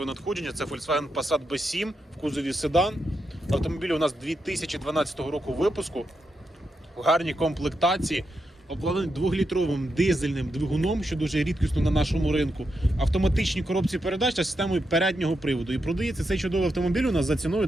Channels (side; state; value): both; normal; correlation 0.85